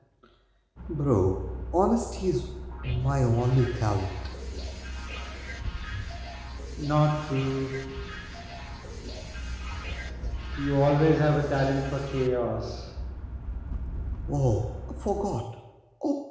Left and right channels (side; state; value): both; identical; correlation 1.00